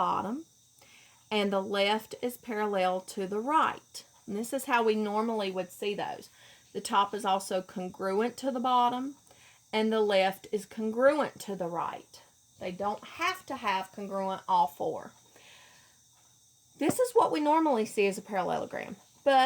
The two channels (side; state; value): both; identical; correlation 1.00